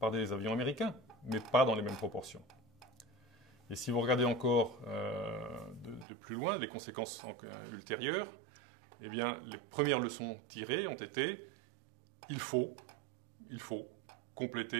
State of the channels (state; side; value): drops out; left; at 6.1 s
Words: des avions américains, mais pas dans les mêmes proportions. Et si vous regardez encore de plus loin les conséquences ultérieures, eh bien, les premières leçons tirées ont été il faut